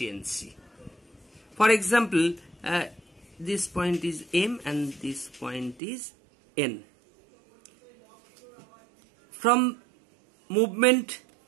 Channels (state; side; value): drops out; left; at 5.8 s